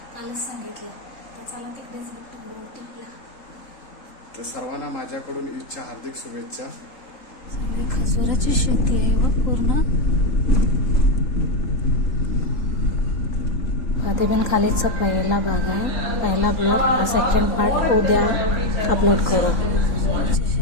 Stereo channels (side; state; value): right; late; 3.7 ms